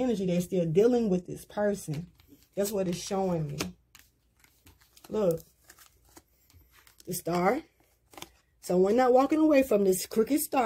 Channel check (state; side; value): identical; both; correlation 1.00